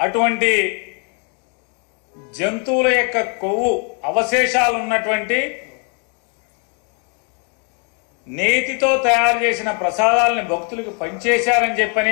జంతువుల యొక్క కొవ్వు అవశేషాలు ఉన్నటువంటి నేతితో తయారు చేసిన ప్రసాదాలని భక్తులకు పంచేశారని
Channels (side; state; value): right; quieter; 38.3 dB